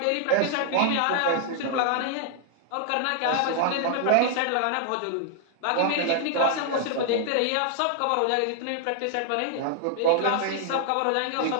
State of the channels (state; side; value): different; both; correlation 0.00